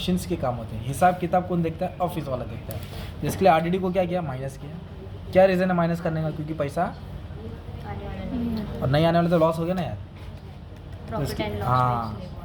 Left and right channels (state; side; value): identical; both; correlation 1.00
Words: के काम होते हैं। हिसाब किताब कौन देखता है, ऑफिस वाला देखता है। जिसके लिए RDD को क्या किया, माइनस किया। क्या रीज़न है माइनस करने का, क्योंकि पैसा आने वाला नहीं और नहीं आने वाला तो लॉस हो गया ना यार। तो प्रॉफिट एंड लॉस हाँ,